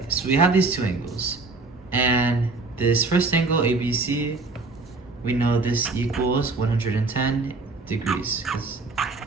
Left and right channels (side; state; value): left; quieter; 3.6 dB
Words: so we have these two angles. And this first angle, ABC, we know this equals 110 degrees.